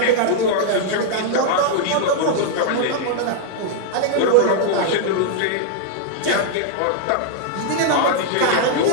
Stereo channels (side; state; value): both; different; correlation -0.01